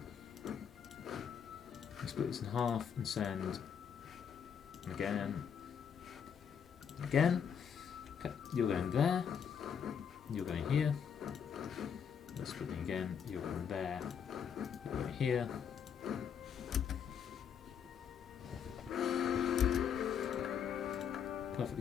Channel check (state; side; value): quieter; right; 7.6 dB